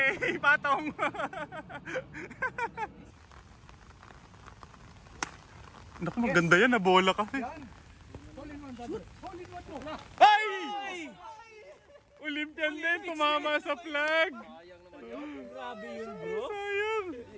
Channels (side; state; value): both; identical; correlation 1.00